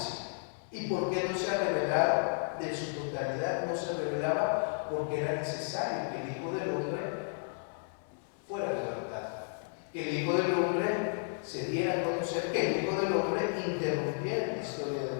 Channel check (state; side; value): silent; right; digital silence